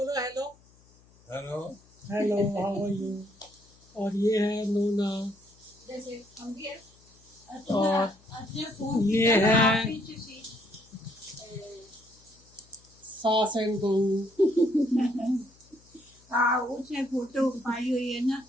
Hello hello. Hello, how are you. और ये है नूना, जैसे हम भी है और ये है सास एंड बहू। हाँ उसने फोटो पाई हुई है ना।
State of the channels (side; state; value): left; noise; hum, 29 dB below the sound